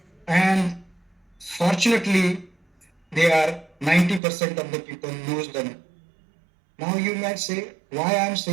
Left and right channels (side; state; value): left; drops out; at 4.2 s